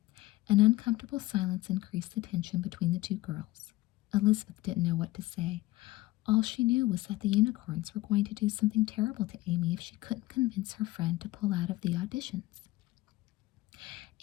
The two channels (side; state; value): right; quieter; 18.5 dB